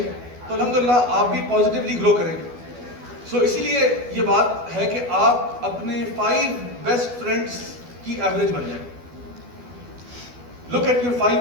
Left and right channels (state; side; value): late; left; 12 ms